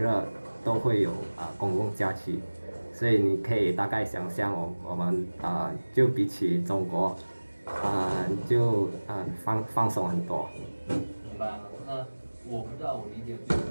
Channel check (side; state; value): both; inverted; correlation -1.00